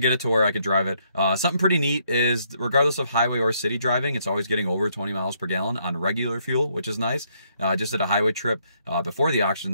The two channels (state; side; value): inverted; both; correlation -0.72